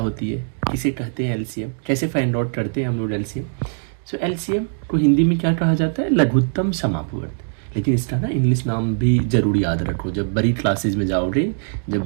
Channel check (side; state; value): left; silent; digital silence